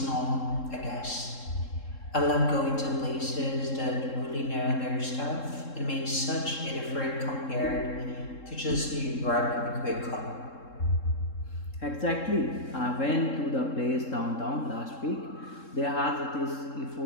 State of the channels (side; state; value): right; late; 3.7 ms